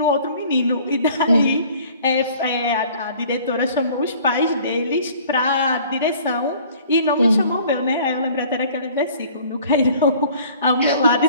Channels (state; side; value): inverted; both; correlation -0.52